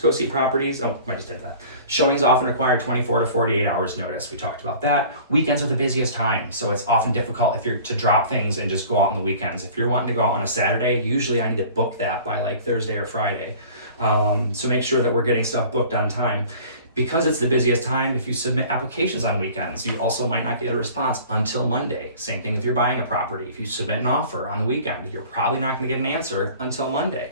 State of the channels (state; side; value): inverted; both; correlation -0.46